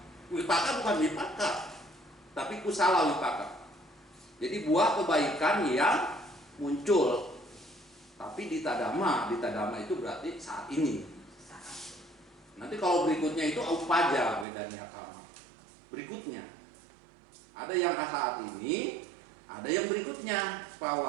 wipaka bukan wipaka, tapi kusala wipaka. Jadi buah kebaikan yang muncul. Tapi Dita Dhamma itu berarti saat ini. Nanti kalau berikutnya itu upaja Wedaniya Kama. Berikutnya ada yang saat ini, ada yang berikutnya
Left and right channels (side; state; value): left; drops out; at 14.5 s